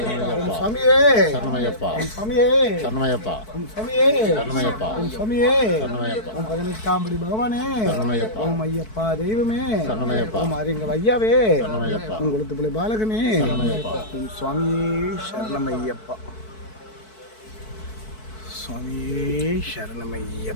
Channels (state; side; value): late; right; 4.6 ms